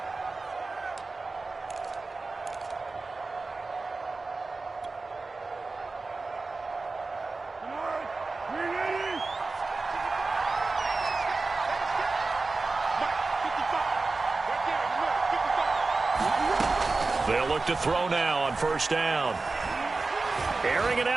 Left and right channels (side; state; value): left; quieter; 3.7 dB